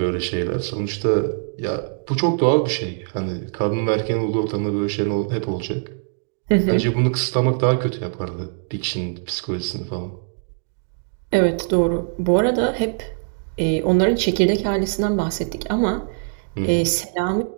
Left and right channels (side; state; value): left; silent; digital silence